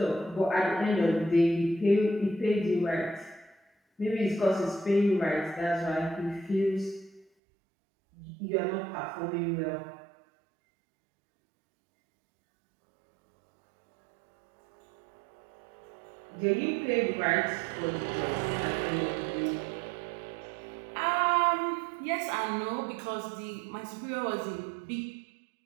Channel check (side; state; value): left; drops out; at 7.2 s